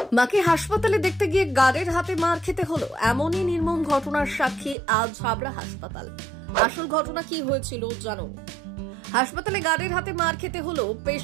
মাকে হাসপাতালে দেখতে গিয়ে গার্ডের হাতে মার খেতে হলো, এমনই নির্মম ঘটনার সাক্ষী আজ হাবড়া হাসপাতাল। আসল ঘটনা কি হয়েছিল জানুন। হাসপাতালে গার্ডের হাতে মার খেতে হলো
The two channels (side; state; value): left; drops out; at 4.8 s